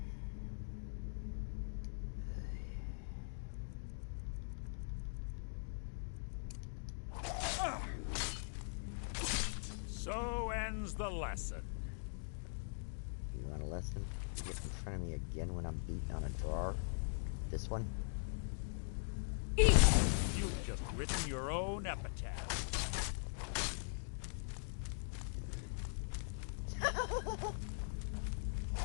So ends the lesson. You want a lesson? You get in front of me again when I'm beating on a drawer? This one? You've just written your own epitaph.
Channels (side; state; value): right; silent; digital silence